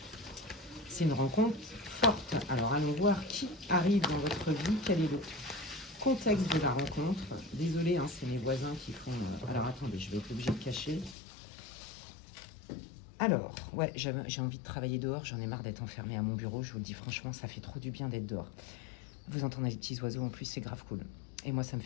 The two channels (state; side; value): drops out; right; at 11.2 s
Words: c'est une rencontre forte. Alors, allons voir qui arrive dans votre vie. Quel est le contexte de la rencontre? Désolée, hein, c'est mes voisins qui font... Alors, attendez, je vais être obligée de cacher. Alors, ouais, j'ai envie de travailler dehors, j'en ai marre d'être enfermée à mon bureau, je vous le dis franchement, ça fait trop du bien d'être dehors. Vous entendez les petits oiseaux en plus, c'est grave cool. Et moi, ça me